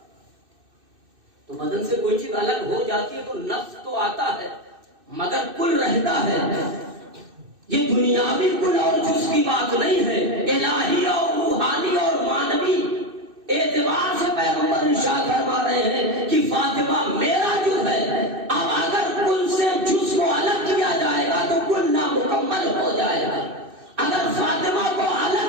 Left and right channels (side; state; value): left; late; 2.6 ms